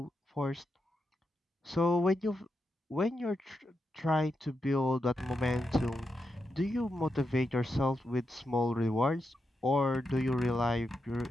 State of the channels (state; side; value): normal; both; correlation 0.86